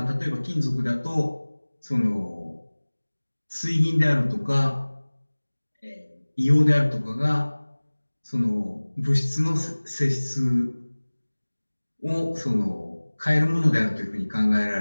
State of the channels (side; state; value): both; inverted; correlation -1.00